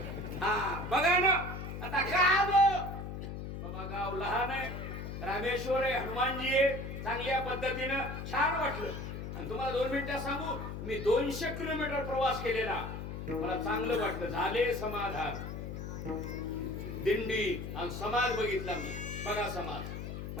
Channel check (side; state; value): left; noise; hum, 7 dB below the sound